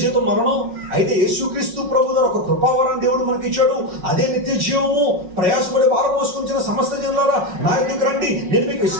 జీతం మరణం. అయితే యేసుక్రీస్తు ప్రభు ద్వారా ఒక కృపావరాన్ని దేవుడు మనకి ఇచ్చాడు. అదే నిత్య జీవము. ప్రయాసపడి భారం మోసుకొంచిన సమస్త జనులారా నా ఎదుకు రండి, నేను మీకు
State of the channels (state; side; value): late; left; 5.5 ms